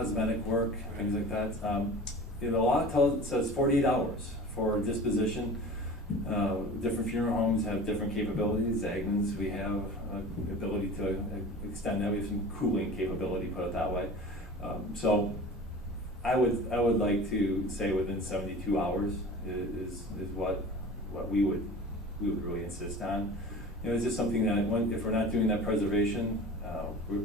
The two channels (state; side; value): normal; both; correlation 0.39